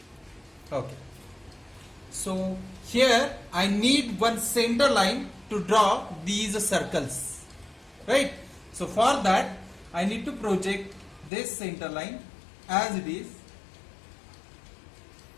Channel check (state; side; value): drops out; right; at 11.3 s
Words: Okay. So here I need one center line to draw these circles, right? So for that I need to project this center line as it is.